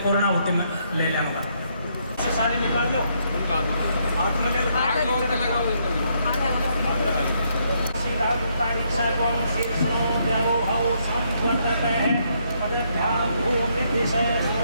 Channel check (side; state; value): both; inverted; correlation -0.74